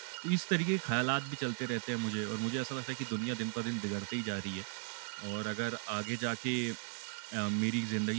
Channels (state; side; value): silent; left; 53 dB below the other